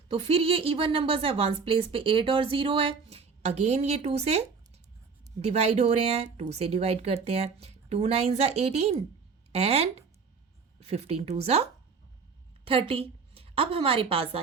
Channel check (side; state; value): left; quieter; 5.3 dB